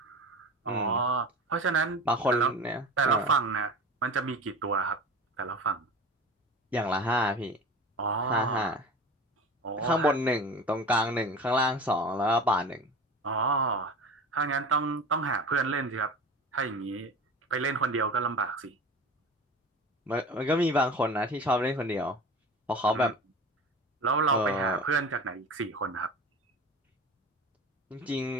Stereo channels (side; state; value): both; normal; correlation 0.34